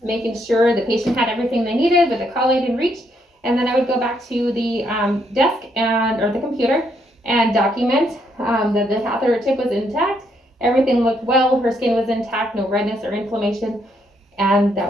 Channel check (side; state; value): both; normal; correlation 0.74